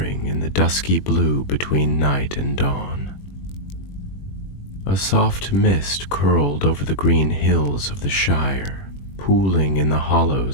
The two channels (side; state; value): right; late; 21 ms